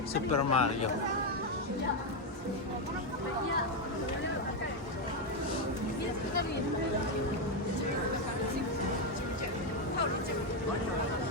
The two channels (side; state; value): both; normal; correlation 0.05